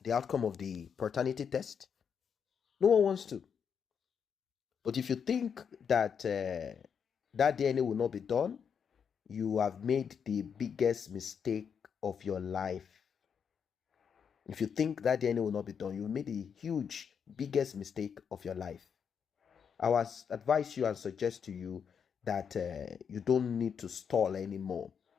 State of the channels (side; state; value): right; quieter; 7.1 dB